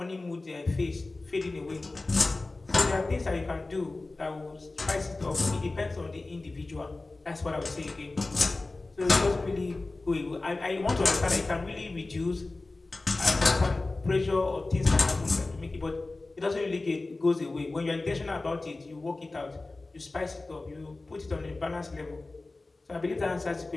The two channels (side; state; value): right; quieter; 3.2 dB